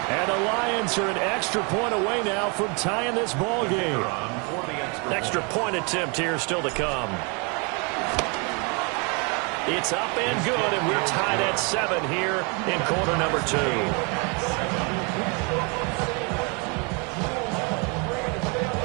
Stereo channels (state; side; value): quieter; left; 32.9 dB